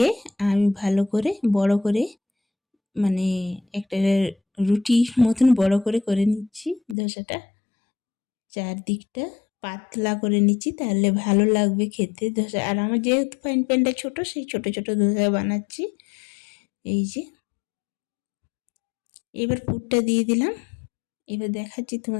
আমি ভালো করে বড় করে মানে একটা রুটির মতন বড় করে করে নিচ্ছি ধোসাটা। চারদিকটা পাতলা করে নিচ্ছি, তাহলে ভালো লাগবে খেতে ধোসা। আর আমার যেহেতু ফ্রাইং প্যানটা ছোটো, সেই ছোটো ছোটো ধোসা বানাচ্ছি। এই যে এবার পুরটা দিয়ে দিলাম। এবার দেখাচ্ছি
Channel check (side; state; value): right; drops out; at 7.0 s